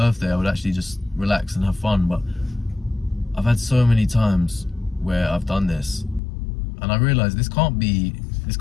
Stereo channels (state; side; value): drops out; right; at 6.2 s